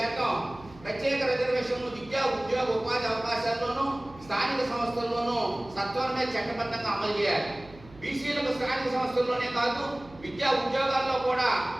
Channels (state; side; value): noise; right; hum, 21 dB below the sound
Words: ప్రత్యేక రిజర్వేషన్లు విద్యా, ఉద్యోగ, ఉపాధి అవకాశాల్లోనూ స్థానిక సంస్థల్లోనూ సత్వరమే చట్టబద్ధంగా అమలు చేయాలి. బీసీలకు స్థానిక సంస్థల్లోనే కాదు, విద్యా ఉద్యోగాల్లో కూడా